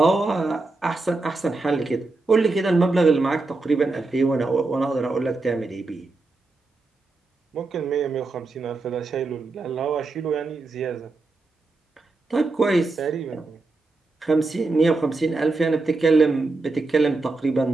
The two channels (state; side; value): quieter; left; 3.5 dB